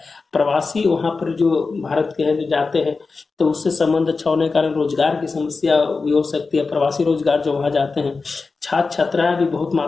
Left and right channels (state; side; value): quieter; right; 4.2 dB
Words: प्रवासी वहां पर जो भारत के हैं जो जाते हैं तो उससे संबंध अच्छा होने के कारण रोजगार की समस्या भी हो सकती है। प्रवासी रोजगार जो वहां जाते हैं, छात्र छात्राएं भी बहुत